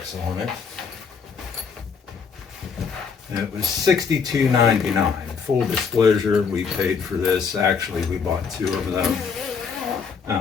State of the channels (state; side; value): quieter; right; 5.9 dB